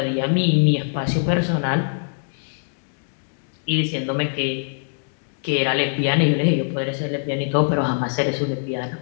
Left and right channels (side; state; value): right; silent; digital silence